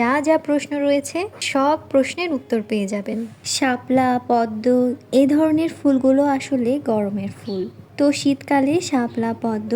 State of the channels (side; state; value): both; identical; correlation 1.00